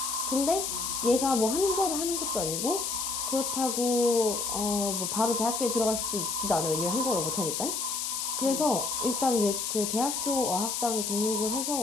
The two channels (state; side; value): noise; left; hiss, 2 dB below the sound